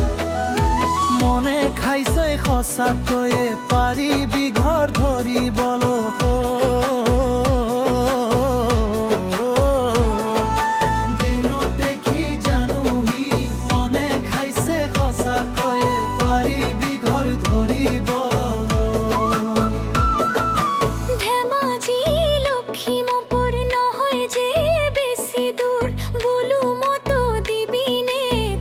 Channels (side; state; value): both; identical; correlation 1.00